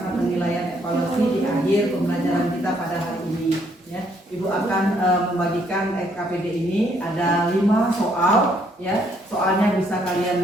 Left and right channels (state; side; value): normal; both; correlation 0.69